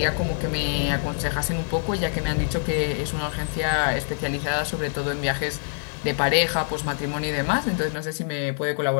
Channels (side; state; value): right; silent; digital silence